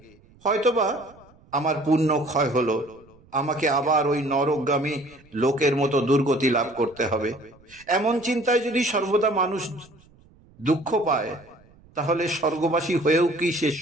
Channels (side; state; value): right; noise; rumble, 28 dB below the sound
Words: হয়তোবা আমার পুণ্য ক্ষয় হলো, আমাকে আবার ওই নরকগামী লোকের মতো দুর্গতি লাভ করতে হবে। এমন চিন্তায় যদি সর্বদা মানুষ দুঃখ পায়, তাহলে স্বর্গবাসী হয়েও কি সে